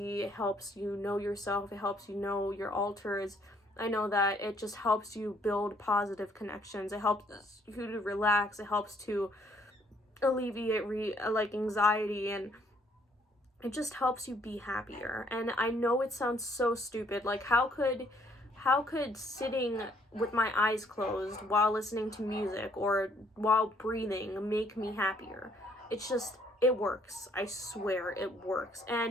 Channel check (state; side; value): normal; both; correlation 0.66